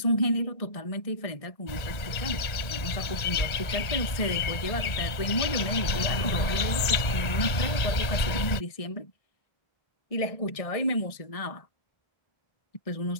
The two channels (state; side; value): late; right; 1.8 ms